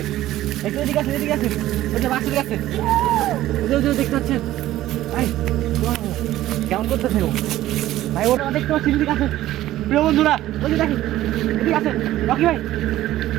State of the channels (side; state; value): left; quieter; 14.5 dB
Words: একটু এদিকে আছে, এদিকে আছে, ওই যে বাসের কাছে দেখতে পাচ্ছেন ভাই। কেমন করতেছে ও ভাই? ওটা দেখতে পাচ্ছি, এদিকে আছে। প্রিয় বন্ধুরা ওই যে দেখেন, এদিকে আছে রকি ভাই।